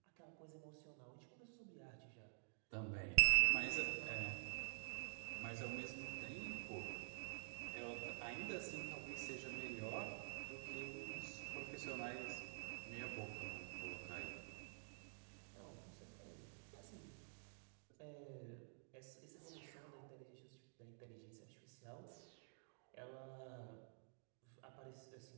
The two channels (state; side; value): silent; left; digital silence